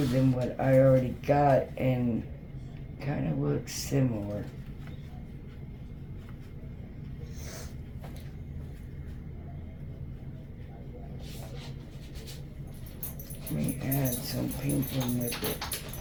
than what I already got and kind of looks similar. Let me add some pink in with it.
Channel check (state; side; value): identical; both; correlation 1.00